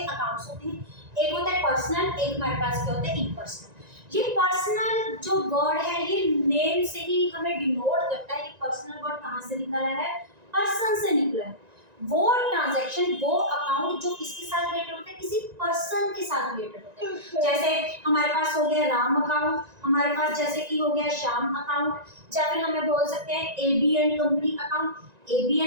अकाउंट्स होते हैं। एक होता है पर्सनल, एक हमारे पास क्या होता है? इम्पर्सनल। ये पर्सनल जो वर्ड है, ये नेम से ही हमें डिनोट करता है कि पर्सनल वर्ड कहाँ से निकला है? पर्सन से निकला है। वो ट्रांजैक्शन, वो अकाउंट जो किसके साथ रिलेटेड होता है? किसी पर्सन के साथ रिलेटेड होता है। जैसे हमारे पास हो गया राम अकाउंट, हमारे पास जैसे कि हो गया श्याम अकाउंट, या फिर हमें बोल सकते हैं एबीएन कंपनी अकाउंट।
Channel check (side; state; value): left; late; 1.9 ms